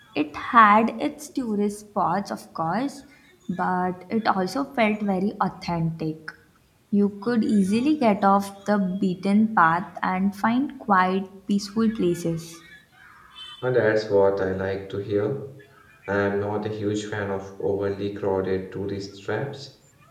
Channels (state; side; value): identical; both; correlation 1.00